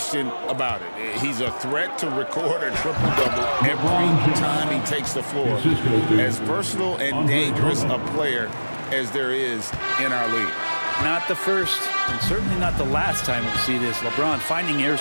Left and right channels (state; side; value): inverted; both; correlation -1.00